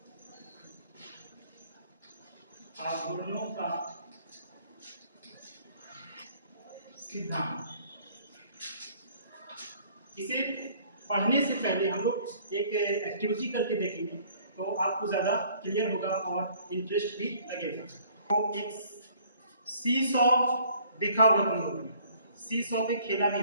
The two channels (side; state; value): both; inverted; correlation -0.57